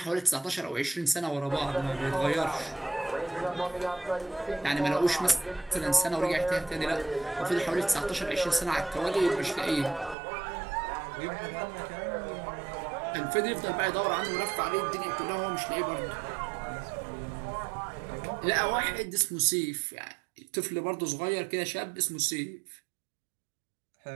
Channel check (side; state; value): left; drops out; at 10.2 s